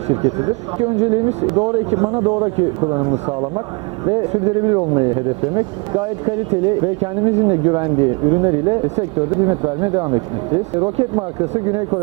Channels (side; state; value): left; quieter; 31.4 dB